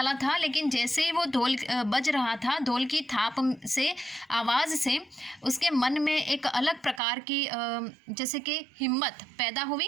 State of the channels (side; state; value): left; drops out; at 7.0 s